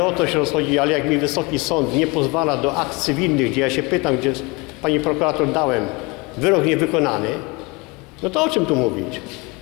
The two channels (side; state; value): right; quieter; 26.7 dB